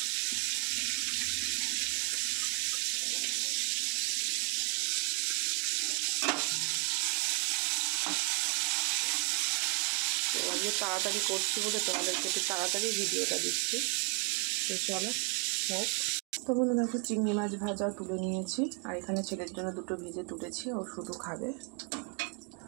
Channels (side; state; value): left; quieter; 37.0 dB